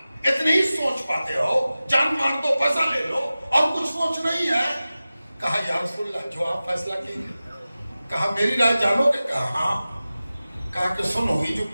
इतनी ही सोच पाते हो, जान मार दो, पैसा ले लो, और कुछ सोच नहीं है। कहा या रसूलल्लाह, जो आप फैसला कीजिए। कहा मेरी राय जानोगे? कहा हाँ। कहा कि सुनो, ये जो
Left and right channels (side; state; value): both; inverted; correlation -0.96